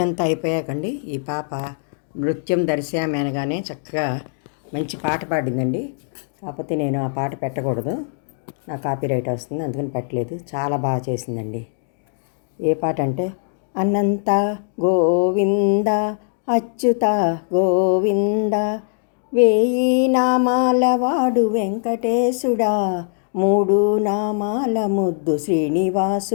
అంతా అయిపోయాకండి ఈ పాప నృత్యం దర్శనం అనగానే చక్కగా మంచి పాట పాడిందండి. కాకపోతే నేను ఆ పాట పెట్టకూడదు, నా కాపీరైట్ వస్తుంది, అందుకని పెట్టలేదు. చాలా బాగా చేసిందండి. ఏ పాట అంటే అనంత గోవింద అచ్యుత గోవింద వేయి నామాల వాడు వెంకటేశుడా, మూడు నామాల ముద్దు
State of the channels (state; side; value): silent; right; digital silence